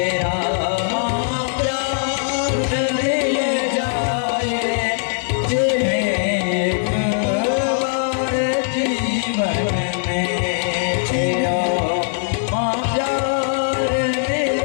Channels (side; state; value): right; silent; digital silence